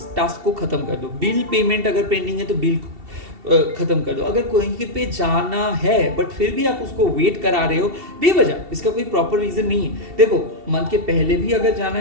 टास्क को खत्म कर दो। बिल पेमेंट अगर पेंडिंग है तो बिल खत्म कर दो। अगर कोई पे जाना है बट फिर भी आप उसको वेट करा रहे हो बेवजह, इसका कोई प्रॉपर रीजन नहीं है। देखो, मंथ के पहले भी अगर जाना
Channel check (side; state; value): left; late; 2.7 ms